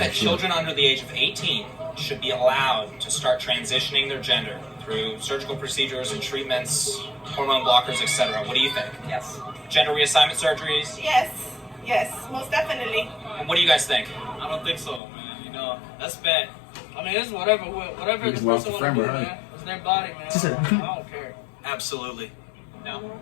children under the age of 18 should be allowed to start transitioning their gender through surgical procedures and treatments, hormone blockers, etc.? What do you think? Yes. Gender reassignment surgeries? Yes, most definitely. What do you guys think? I don't think so, man. You know, that's bad. I mean, it's whatever the just lost person a want to friend, do, right? man. It's their body, man. I don't care. Absolutely. No.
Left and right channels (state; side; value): drops out; right; at 15.0 s